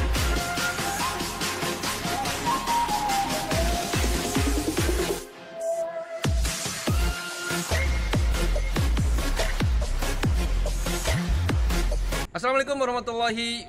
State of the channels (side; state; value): both; identical; correlation 1.00